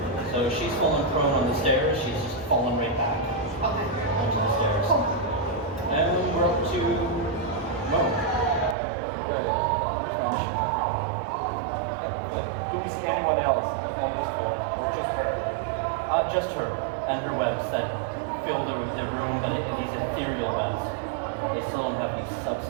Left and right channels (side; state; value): left; drops out; at 8.8 s